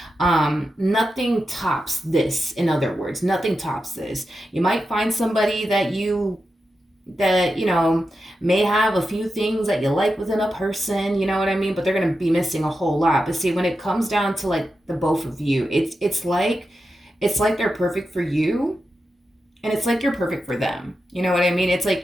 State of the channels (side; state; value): both; normal; correlation 0.89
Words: Nothing tops this. In other words, nothing tops this. You might find somebody that may have a few things that you like within a person, you know what I mean? But they're going to be missing a whole lot. But see, when it comes down to like the both of you, it's like they're perfect for you. And it's like you're perfect for them. You know what I mean? It's like